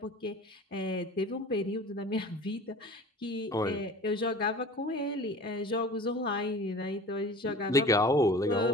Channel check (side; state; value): both; normal; correlation 0.41